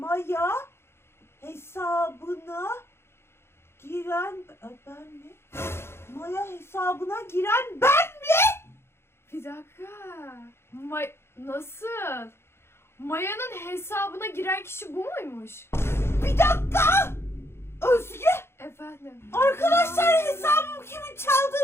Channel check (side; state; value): right; late; 0.12 ms